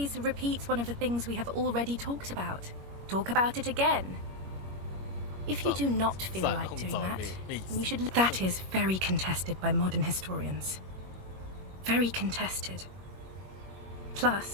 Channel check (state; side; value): late; left; 21 ms